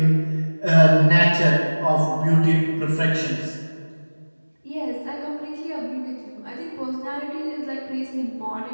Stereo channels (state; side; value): inverted; both; correlation -1.00